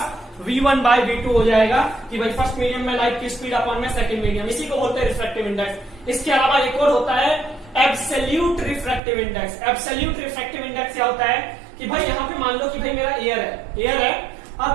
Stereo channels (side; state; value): left; drops out; at 9.0 s